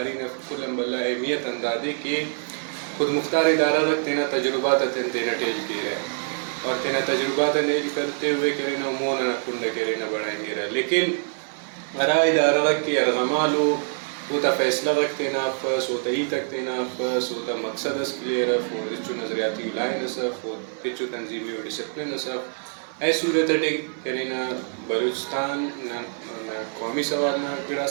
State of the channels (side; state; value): left; silent; 57 dB below the other